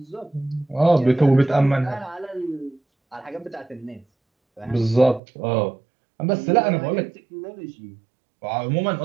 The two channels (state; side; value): drops out; left; at 5.2 s